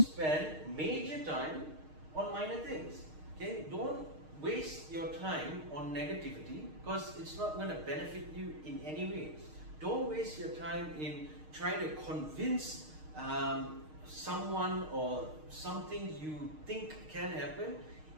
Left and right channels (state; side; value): late; left; 6.5 ms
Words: major time on minor things, okay? Don't waste your time on negativity, because it's not going to benefit you in any way. Don't waste your time in trying to convince someone or something you think can happen